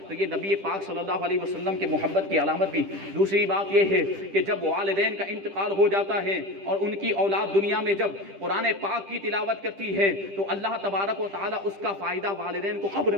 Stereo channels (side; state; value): left; late; 10 ms